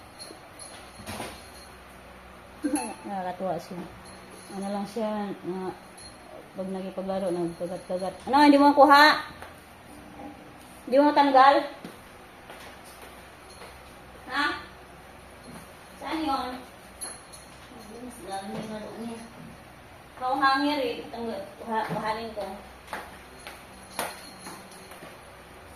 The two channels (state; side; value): identical; both; correlation 1.00